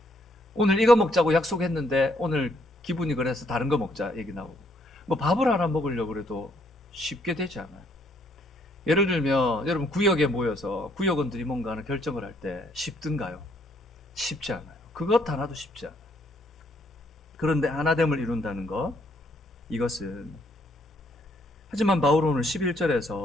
오늘 이거 먹자고 약속했는데 오늘 기분이 그래서 다른 거 먹자 얘기 나오고, 뭐 밥을 하나 먹으려고 그래도 쉽게 되지 않아요. 예를 들면 여러분 구역에 모여서 구역원들이 뭔가 하는 결정을 할 때 쉽든가요? 쉽지 않아요. 그것 하나도 쉽지 않아요. 그런데 하나됨을 이룬다는 것, 이것은, 하지만 바울은 오늘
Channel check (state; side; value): normal; both; correlation 0.69